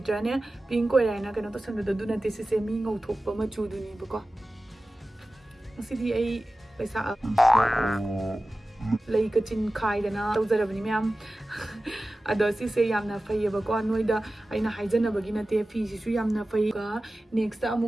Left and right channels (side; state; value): both; normal; correlation 0.95